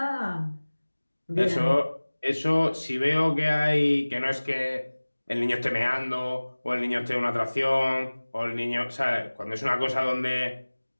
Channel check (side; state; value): both; inverted; correlation -1.00